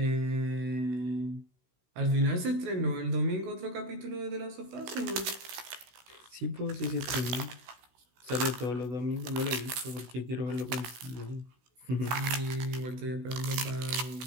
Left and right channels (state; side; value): late; left; 16 ms